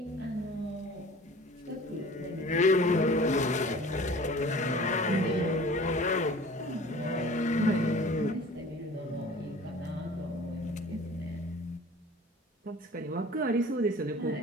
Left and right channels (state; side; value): normal; both; correlation 0.45